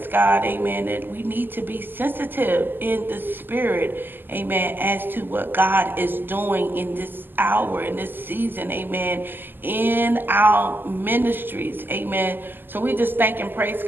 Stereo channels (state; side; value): late; left; 0.093 ms